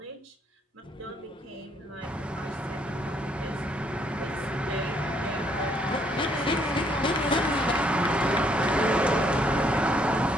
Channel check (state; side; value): normal; both; correlation 0.68